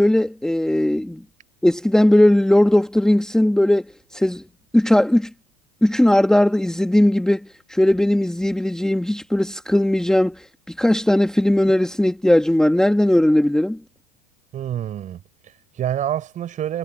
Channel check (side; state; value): both; normal; correlation 0.98